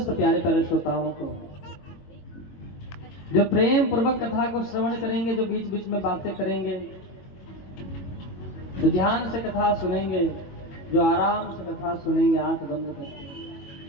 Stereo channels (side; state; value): right; late; 21 ms